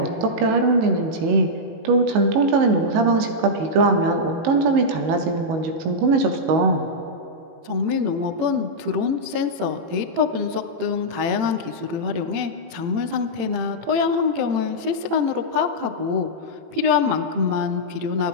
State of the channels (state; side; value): late; left; 18 ms